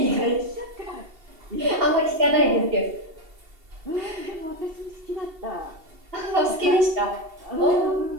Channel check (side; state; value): left; late; 2.7 ms